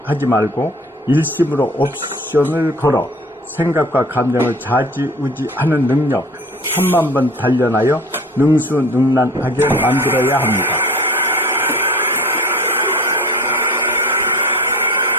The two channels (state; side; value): normal; both; correlation 0.42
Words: 하지 말고 일심으로 옵션을 걸어 생각과 감정을 자지우지하는 능력 1000만번 단련하여 능수능란하게 만들어야 합니다.